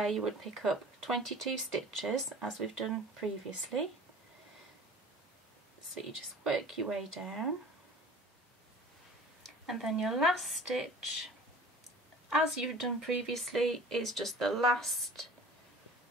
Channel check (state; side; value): normal; both; correlation 0.44